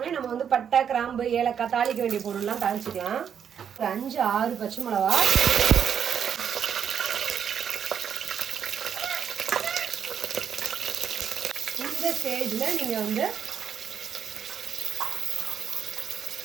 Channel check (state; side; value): quieter; left; 8.1 dB